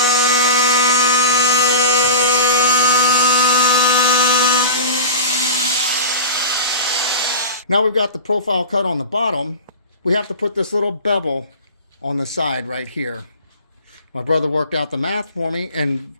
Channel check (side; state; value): both; inverted; correlation -0.31